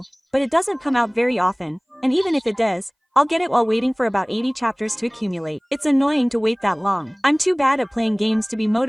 but it doesn't come out very often, and even if it does, I'll get it while waiting for about 80 chapters to accumulate. It's annoying to wait that long. I'm too bad at playing games to be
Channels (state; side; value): identical; both; correlation 1.00